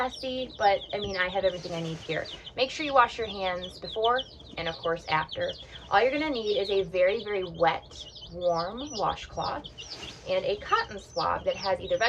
but I mean, I have everything I need here. Make sure you wash your hands before and of course after. All you're going to need is a very wet, warm washcloth and a cotton swab that has either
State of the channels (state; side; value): identical; both; correlation 1.00